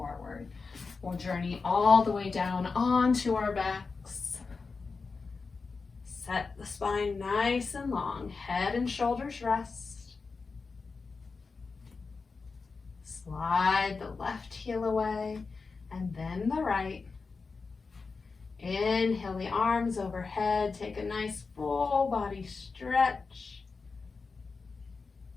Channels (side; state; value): right; quieter; 4.5 dB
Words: We'll journey all the way down onto our backs. Set the spine nice and long. Head and shoulders rest. Slide the left heel away and then the right. Inhale the arms overhead. Take a nice full body stretch.